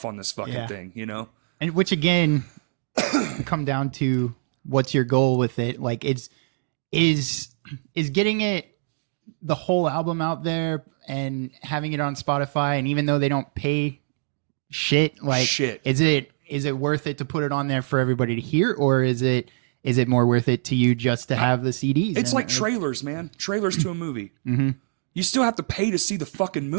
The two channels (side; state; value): left; silent; digital silence